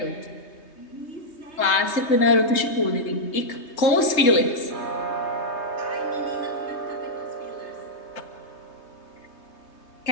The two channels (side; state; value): right; late; 3.3 ms